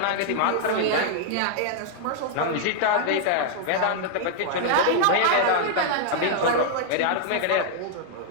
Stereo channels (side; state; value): both; different; correlation -0.01